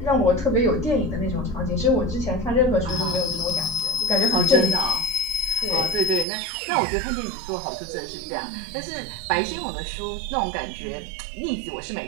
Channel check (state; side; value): drops out; left; at 6.2 s